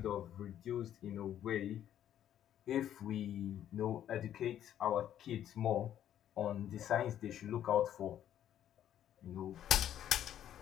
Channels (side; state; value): right; quieter; 10.8 dB